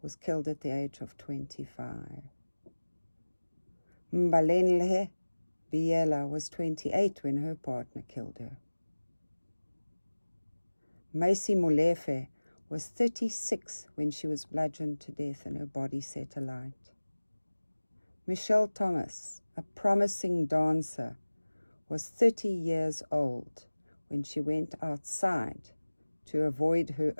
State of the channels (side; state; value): both; inverted; correlation -1.00